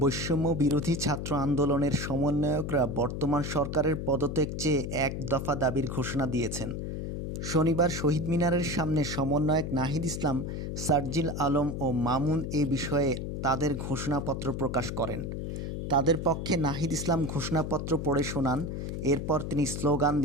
বিরোধী ছাত্র আন্দোলনের সমন্বয়করা বর্তমান সরকারের পদত্যাগ চেয়ে এক দফা দাবির ঘোষণা দিয়েছেন। শনিবার শহীদ মিনারের সামনে সমন্বয়ক নাহিদ ইসলাম, সার্জিল আলম ও মামুন এ বিষয়ে তাদের ঘোষণাপত্র প্রকাশ করেন। তাদের পক্ষে নাহিদ ইসলাম ঘোষণাপত্র পড়ে শোনান, এরপর তিনি স্লোগান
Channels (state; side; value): noise; left; hum, 4 dB below the sound